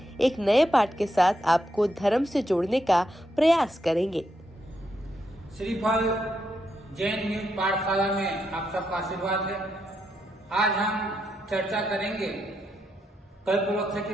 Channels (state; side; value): normal; both; correlation 0.81